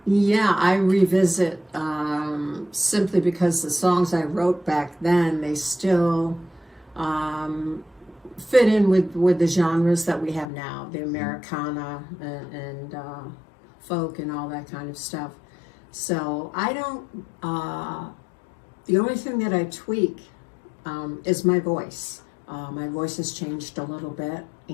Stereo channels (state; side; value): drops out; right; at 10.5 s